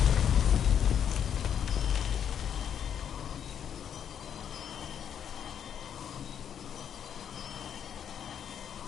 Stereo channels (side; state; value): right; quieter; 8.7 dB